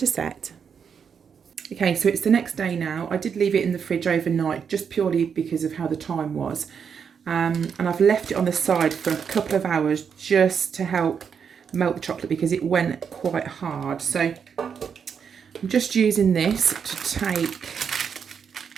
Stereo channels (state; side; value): quieter; left; 6.9 dB